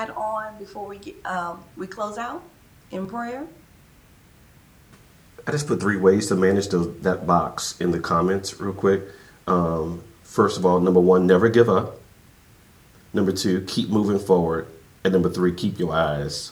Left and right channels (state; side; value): identical; both; correlation 1.00